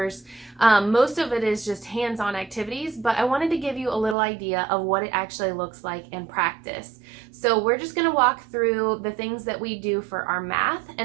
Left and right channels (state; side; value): drops out; left; at 4.2 s